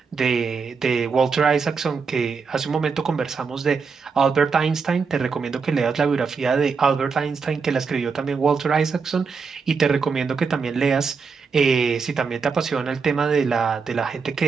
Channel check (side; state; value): left; quieter; 5.2 dB